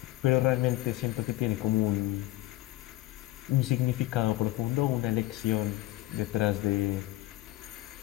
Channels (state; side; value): quieter; right; 17.3 dB